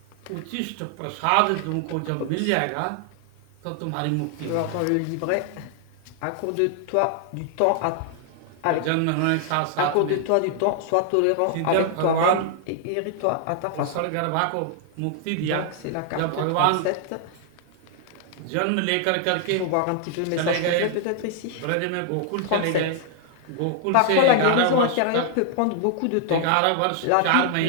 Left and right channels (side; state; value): both; different; correlation 0.00